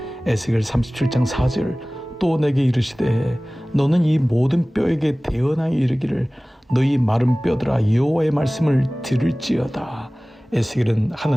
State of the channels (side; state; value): both; normal; correlation 0.98